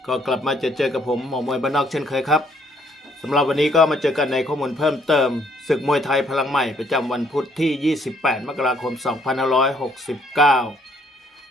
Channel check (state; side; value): normal; both; correlation 0.67